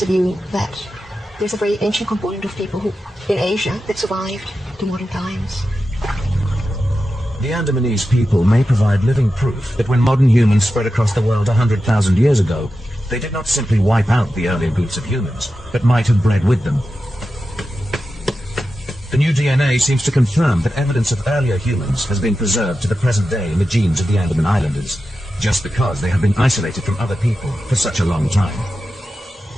view that there's a very ancient component of people who, in Asia, that survived to modern times. The Andamanese people may provide living proof that when modern humans spread across the world 100,000 years ago, they did not simply wipe out the earlier groups of humans, but might have bred with them. The new DNA seems to confirm that evidence of earlier humans has been preserved to the present day in the genes of the Andeman Islanders, just because they have been isolated from other people for such a long time.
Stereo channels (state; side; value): normal; both; correlation 0.91